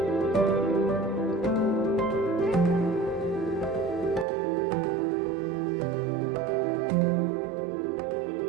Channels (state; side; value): drops out; left; at 4.2 s